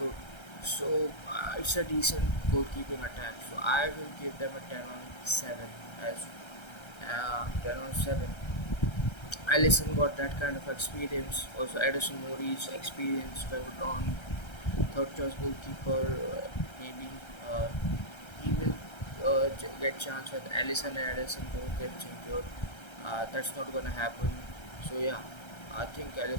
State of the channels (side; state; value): right; late; 1.3 ms